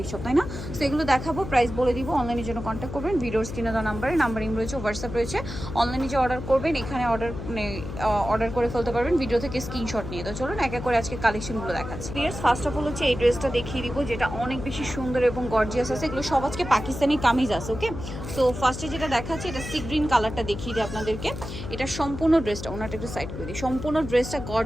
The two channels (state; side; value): noise; left; hum, 8 dB below the sound